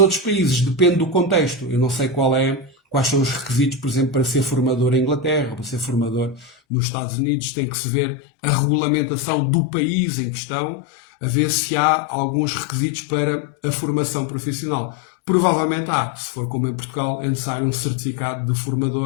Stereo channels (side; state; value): right; drops out; at 6.5 s